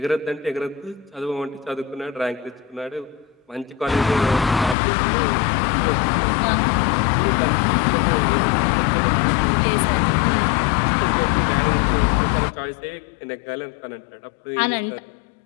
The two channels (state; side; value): drops out; right; at 4.8 s